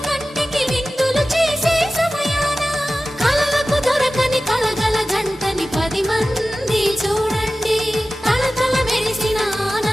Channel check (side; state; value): both; normal; correlation 0.95